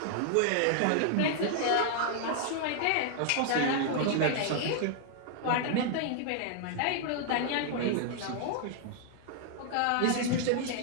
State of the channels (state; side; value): different; both; correlation 0.00